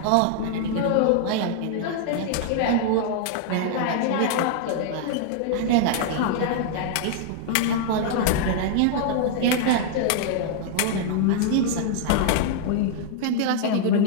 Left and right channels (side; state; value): both; different; correlation -0.01